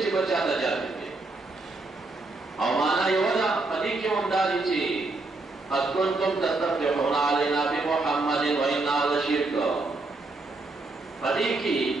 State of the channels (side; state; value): left; quieter; 3.3 dB